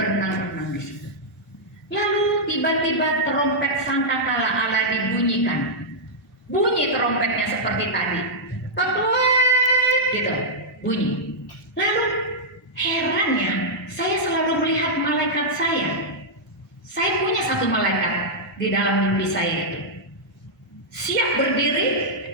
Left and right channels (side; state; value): both; normal; correlation -0.08